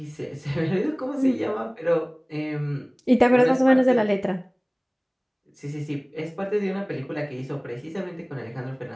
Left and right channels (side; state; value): both; identical; correlation 1.00